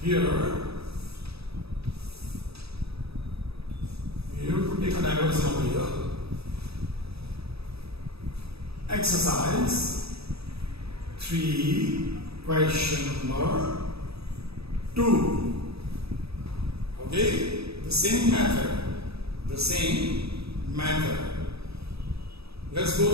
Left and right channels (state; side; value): late; left; 0.78 ms